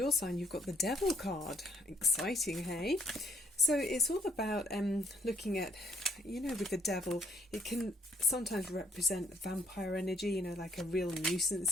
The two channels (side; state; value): both; normal; correlation 0.68